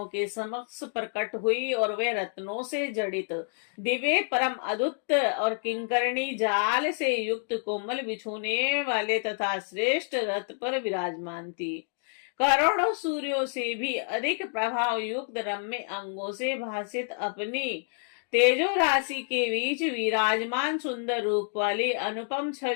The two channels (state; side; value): silent; right; digital silence